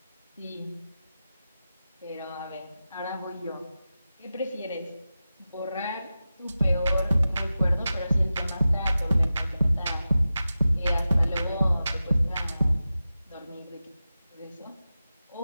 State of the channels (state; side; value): inverted; both; correlation -0.93